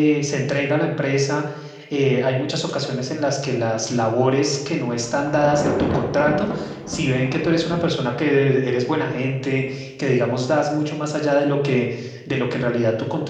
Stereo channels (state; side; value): identical; both; correlation 1.00